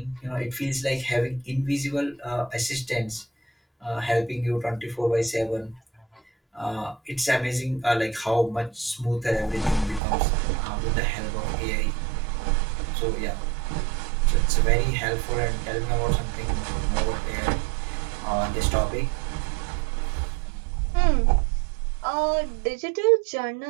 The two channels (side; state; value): left; drops out; at 10.0 s